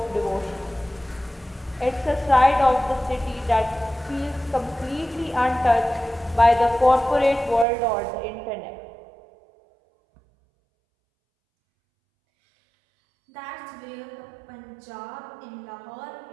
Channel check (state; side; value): drops out; left; at 7.7 s